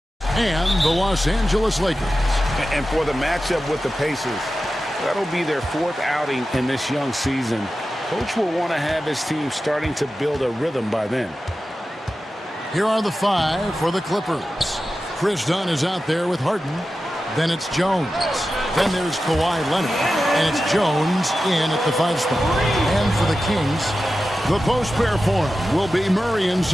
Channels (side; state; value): both; normal; correlation 0.93